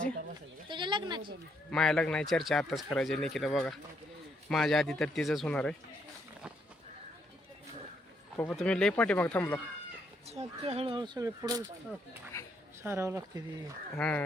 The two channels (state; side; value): normal; both; correlation 0.74